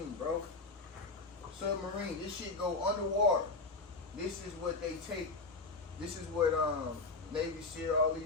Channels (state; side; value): quieter; right; 3.7 dB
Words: bro. Submarine. This shit go underwater. This is what they take. This is what Navy SEAL, all